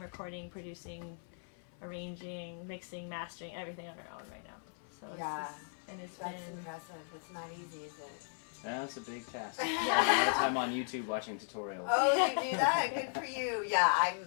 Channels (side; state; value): right; silent; 53 dB below the other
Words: producing, arranging, mixing, mastering, everything on our own right now. So yeah, it's that's impressive. It's not easy, is it? Yeah, it's a big task. A lot of time on YouTube watching tutorials. Oh, you do that? Good for you. Yeah,